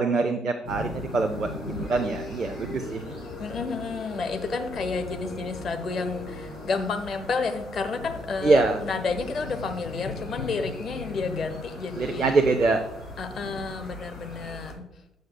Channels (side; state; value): both; normal; correlation 0.73